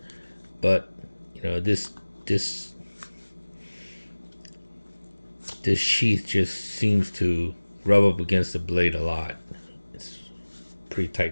But this sheath just seems to rub up against the blade a lot. It's pretty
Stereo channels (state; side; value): inverted; both; correlation -1.00